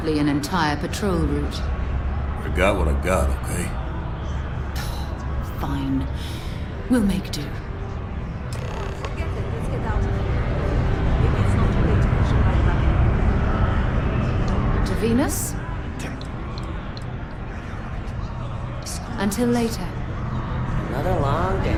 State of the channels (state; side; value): identical; both; correlation 1.00